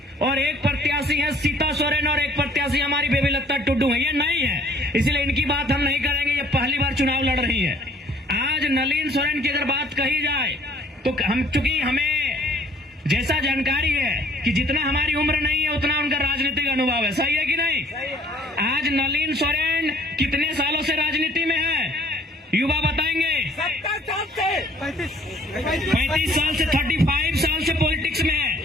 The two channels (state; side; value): normal; both; correlation 0.57